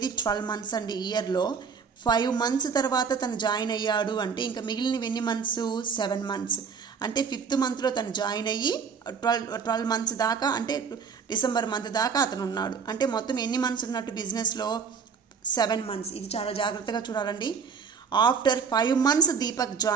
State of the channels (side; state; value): left; quieter; 5.9 dB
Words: 12 months అండి ఇయర్లో. 5 months తర్వాత తను జాయిన్ అయ్యాడు అంటే ఇంకా మిగిలినవి ఎన్ని మంత్స్ 7 months. అంటే 5th monthలో తను జాయిన్ అయ్యి 12 months దాకా అంటే డిసెంబర్ మంత్ దాకా అతను ఉన్నాడు. అంటే మొత్తం ఎన్ని మంత్స్ ఉన్నట్టు బిజినెస్లో 7 months. ఇది చాలా జాగ్రత్తగా చూడాలండి. ఆఫ్టర్ 5 months దీపక్